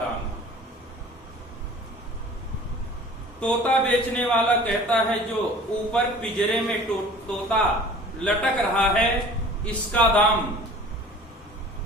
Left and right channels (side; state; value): both; normal; correlation 0.46